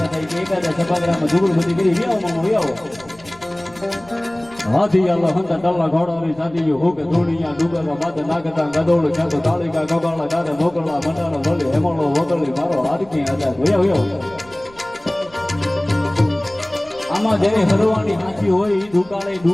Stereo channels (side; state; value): right; noise; rumble, 25 dB below the sound